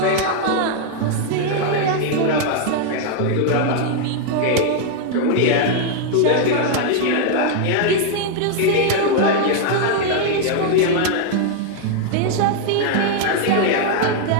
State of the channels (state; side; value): different; both; correlation 0.00